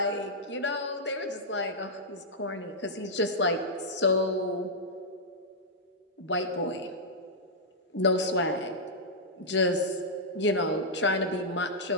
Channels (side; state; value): both; normal; correlation -0.08